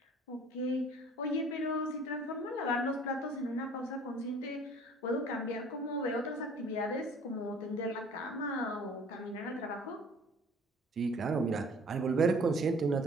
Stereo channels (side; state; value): both; normal; correlation 0.51